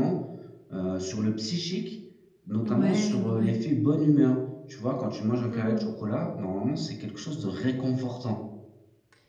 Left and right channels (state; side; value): identical; both; correlation 1.00